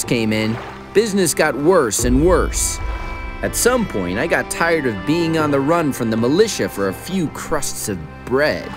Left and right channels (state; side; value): identical; both; correlation 1.00